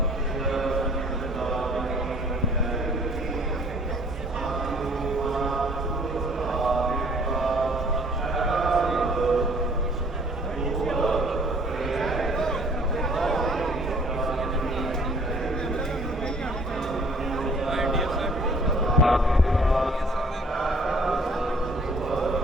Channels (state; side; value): normal; both; correlation 0.55